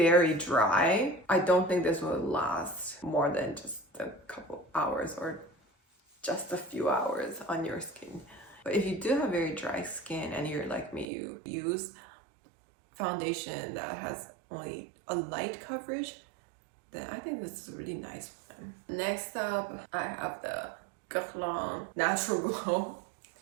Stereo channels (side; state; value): left; drops out; at 11.1 s